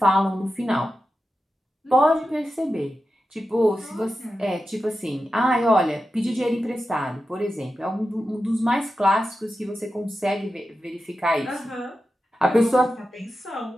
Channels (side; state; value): both; normal; correlation 0.91